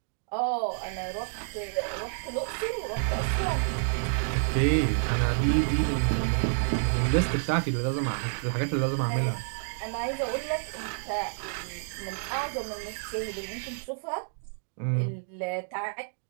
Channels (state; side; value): silent; left; digital silence